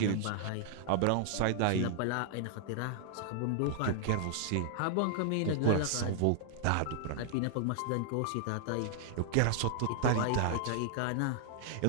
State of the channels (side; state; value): both; different; correlation 0.00